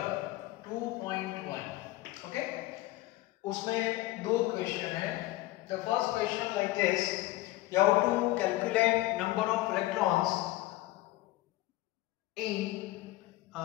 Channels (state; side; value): quieter; right; 17.7 dB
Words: 2.1। ओके, उसमें दो क्वेश्चन है। The first question like this, you have to calculate number of electrons in